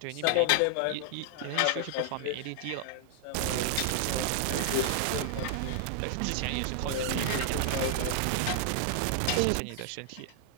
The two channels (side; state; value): both; different; correlation -0.01